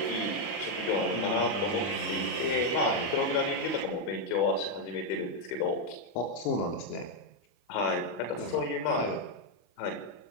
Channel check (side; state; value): right; late; 25 ms